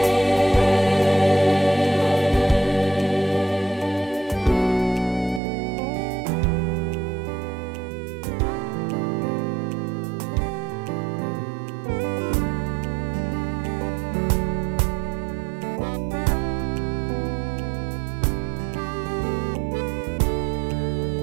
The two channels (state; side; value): drops out; left; at 5.4 s